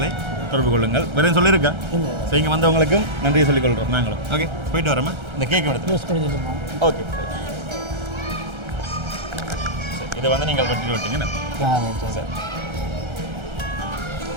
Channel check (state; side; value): late; left; 1.3 ms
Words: தொடர்பு கொள்ளுங்கள். வேறு சொல்லியிருக்கா? ஸோ இங்கே வந்தவங்களுக்கும் நன்றியை சொல்லிக்கொள்கிறோம் நாங்களும். ஓகே, போயிட்டு வரோமா? இந்த கேக் எடுத்து ஓகே. இதை வந்து நீங்கள் கட்டிட்டு விட்டீங்க சார்.